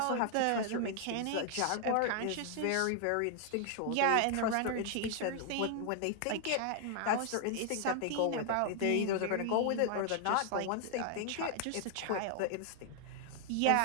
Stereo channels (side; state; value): both; different; correlation 0.00